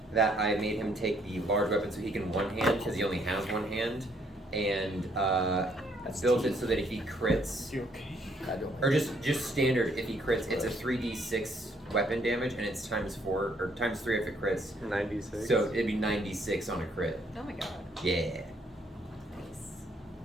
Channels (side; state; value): both; normal; correlation 0.68